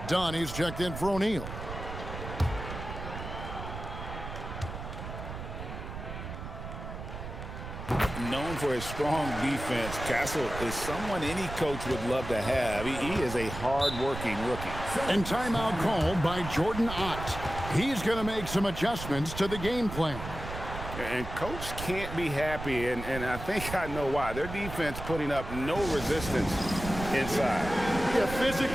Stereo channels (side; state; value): right; noise; rumble, 9 dB below the sound